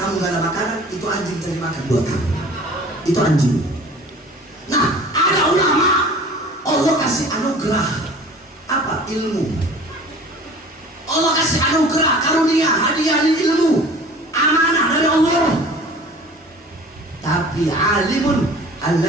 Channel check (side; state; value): both; normal; correlation 0.45